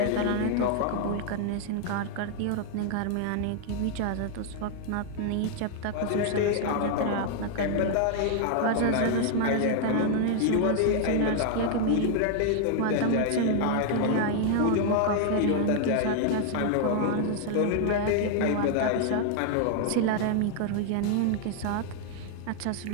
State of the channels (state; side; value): different; both; correlation 0.00